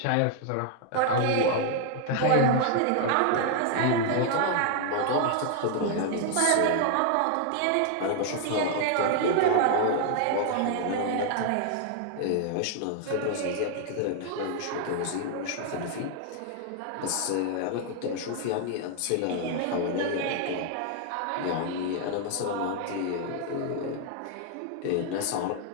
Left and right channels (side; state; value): both; different; correlation 0.00